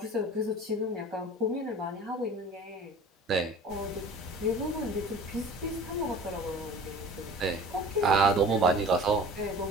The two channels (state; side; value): normal; both; correlation 0.43